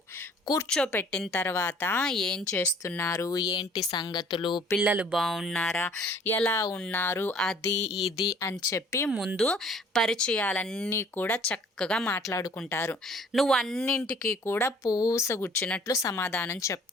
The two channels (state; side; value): normal; both; correlation 0.54